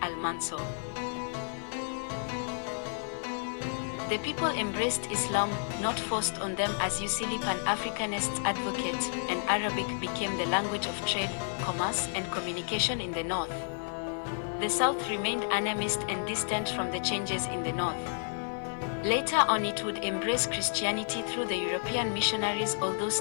Al-Mansour. The people embraced Islam, not forced on them, as usually Pan-Africanists advocate, and Arabic became the language of trade, commerce, and communication in the north. The south remained animist and distant from the changes in the north. Later on it would embrace Christianity through the European missionaries, although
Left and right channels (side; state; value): right; silent; 57 dB below the other